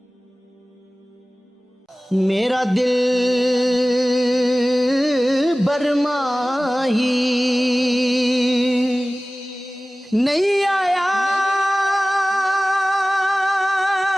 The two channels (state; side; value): normal; both; correlation 0.97